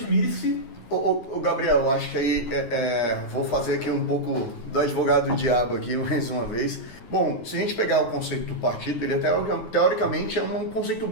Ô Gabriel, eu acho que aí vou fazer aqui um pouco do advogado do diabo aqui mais uma vez. Bom, se a gente pegar o conceito do partido, ele até teoricamente é um conceito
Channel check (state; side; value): late; right; 9.5 ms